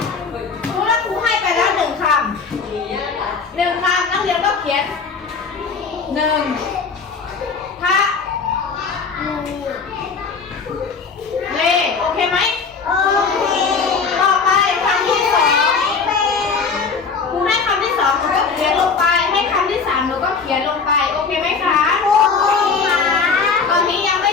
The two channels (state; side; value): quieter; right; 5.1 dB